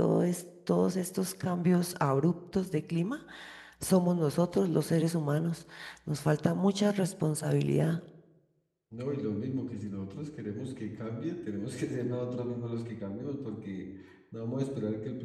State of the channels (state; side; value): identical; both; correlation 1.00